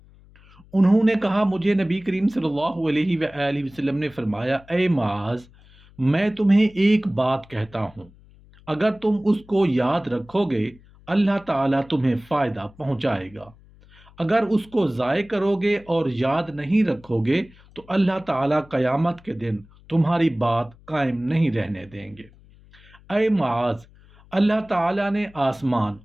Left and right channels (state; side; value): noise; left; hum, 26 dB below the sound